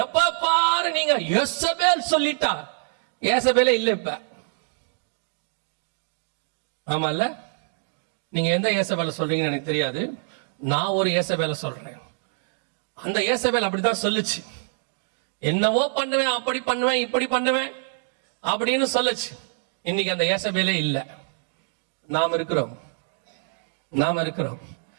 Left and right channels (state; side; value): silent; left; digital silence